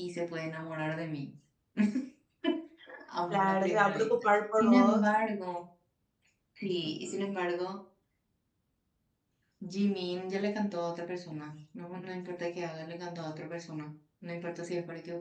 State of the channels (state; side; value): identical; both; correlation 1.00